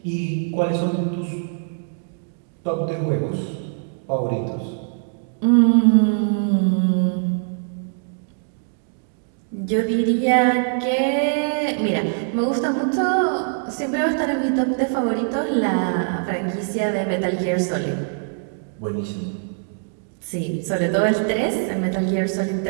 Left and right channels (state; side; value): silent; left; digital silence